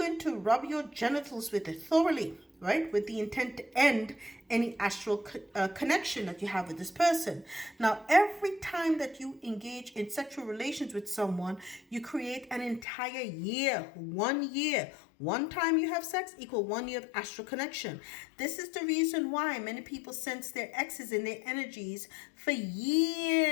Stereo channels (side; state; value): right; drops out; at 12.9 s